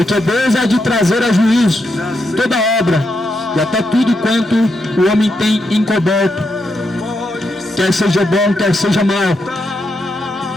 Deus há de trazer a juízo toda obra e até tudo quanto o homem tem encoberto, quer seja bom, quer seja mal.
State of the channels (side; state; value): both; normal; correlation 0.83